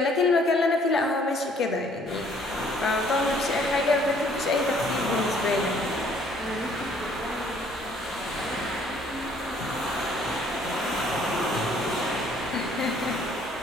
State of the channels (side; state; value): both; normal; correlation 0.61